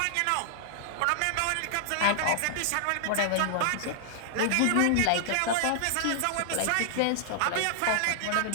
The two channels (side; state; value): both; different; correlation -0.01